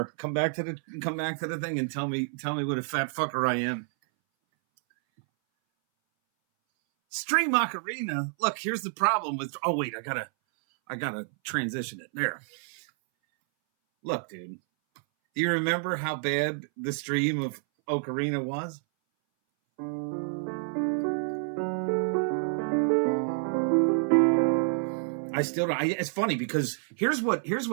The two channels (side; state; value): left; silent; 59 dB below the other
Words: Come back to the thing and tell me what a fat fucker I am. Stream Ocarina. Look, here's the problem with. Oh wait, I gotta transition it there. Look, dude. Do you remember how bad the stream of Ocarina was? I still don't. It's funny because here's what